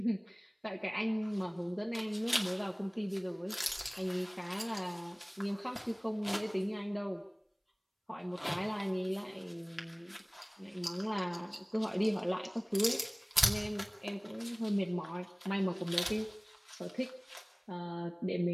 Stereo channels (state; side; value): identical; both; correlation 1.00